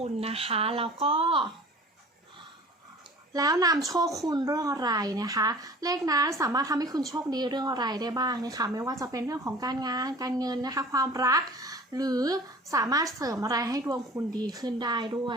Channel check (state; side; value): normal; both; correlation 0.44